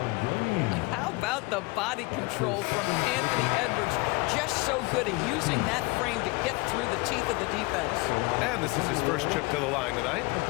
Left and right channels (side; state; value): right; quieter; 25.3 dB